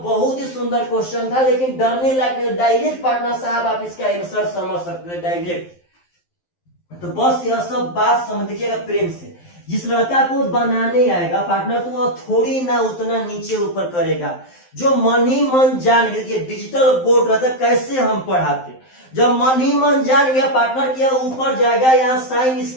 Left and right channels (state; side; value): late; right; 12 ms